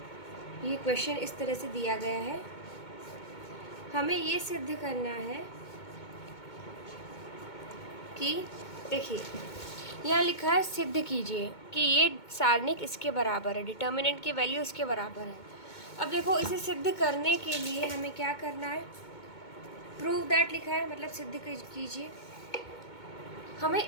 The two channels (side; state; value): right; late; 2.2 ms